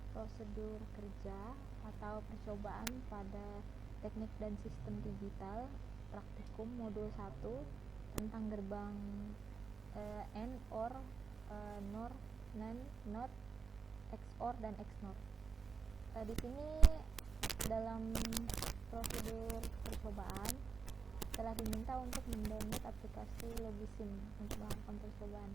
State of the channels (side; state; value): left; quieter; 5.3 dB